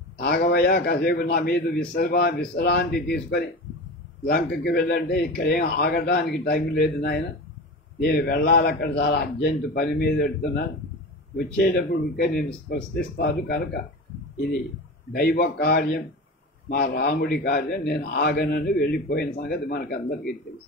ఆగవయ్యా, కాసేపు నా మీద విశ్రాంతి తీసుకొని లంకకి వెళ్ళంటే ఇక్కడేం ఆగటానికి టైం లేదు నాయన, నేను వెళ్ళాలి, అక్కడ చాలా అర్జెంటు పని మీద పెడుతున్నాను, వచ్చేటప్పుడు ఇంకా నేను స్పృశిస్తాను, కనుక ఇది దైవ కార్యం, మా రాముడి కార్యం, నేను ఆగనని వెళ్ళిపోయిన సంగతి మనకందరికీ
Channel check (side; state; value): both; normal; correlation 0.29